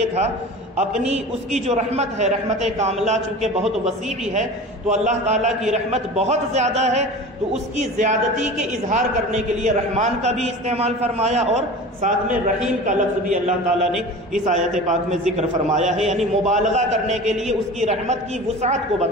تھا، اپنی اس کی جو رحمت ہے، رحمت کاملہ چونکہ بہت وسیع ہے، تو اللہ تعالیٰ کی رحمت بہت زیادہ ہے، تو اس کی زیادتی کے اظہار کرنے کے لیے رحمان کا بھی استعمال فرمایا اور ساتھ میں رحیم کا لفظ بھی اللہ تعالیٰ نے اس آیت پاک میں ذکر فرمایا ہے، یعنی مبالغہ کرنے کے لیے، اس کی رحمت کی وسعت کو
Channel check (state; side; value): normal; both; correlation 0.36